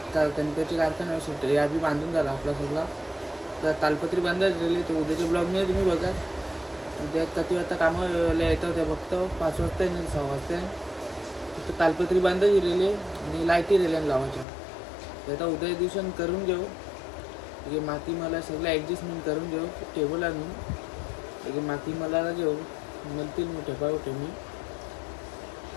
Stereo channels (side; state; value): right; drops out; at 14.5 s